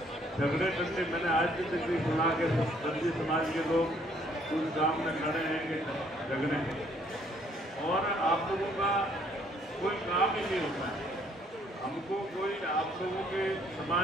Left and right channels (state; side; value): normal; both; correlation 0.64